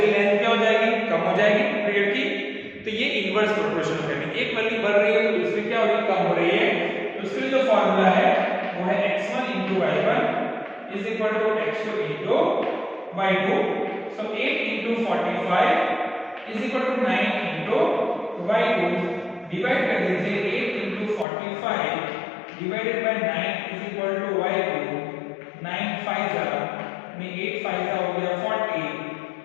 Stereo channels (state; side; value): drops out; right; at 21.2 s